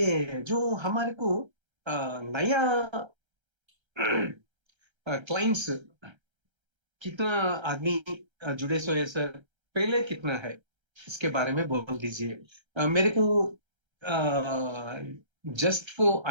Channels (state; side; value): late; left; 1.3 ms